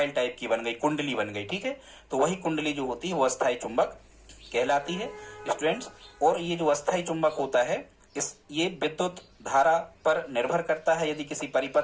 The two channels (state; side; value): identical; both; correlation 1.00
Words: टाइप की बन गई, कुंडली बन गई, ठीक है। तो वही कुंडली जो होती है वो अस्थायी चुंबक कहलाती है स्टूडेंट्स। और ये जो अस्थायी चुंबक होता है ये विद्युत धारा पर निर्भर करता है। यदि किसी